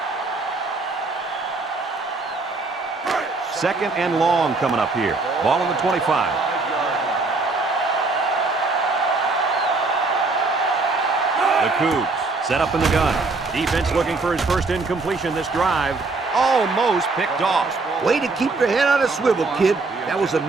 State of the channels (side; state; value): left; quieter; 3.7 dB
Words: Second and long coming up here. Ball on the 25. The Cougs set up in the gun. Defense looking for his first incompletion this drive. Almost picked off. Way to keep your head on a swivel, kid. That was a